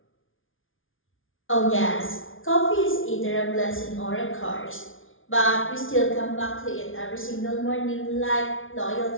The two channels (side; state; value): right; late; 0.58 ms